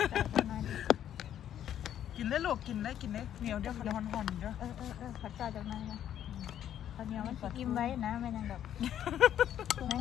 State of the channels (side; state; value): right; quieter; 10.5 dB